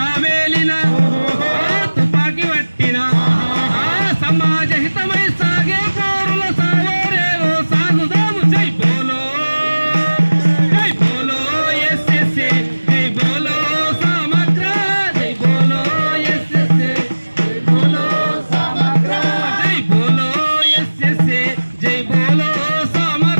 వేలిన తుపాకి పట్టిన, సమాజ హితమై సాగే పోరుల సాగోరేవో సాగుదాము. జై బోలో, జై బోలో ఎస్ఎస్ఏ, జై బోలో సమగ్ర, జై బోలో ఎస్ఎస్ఏ, జై బోలో సమగ్ర, జై బోలో ఎస్ఎస్ఏ, జై బోలో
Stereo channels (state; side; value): inverted; both; correlation -1.00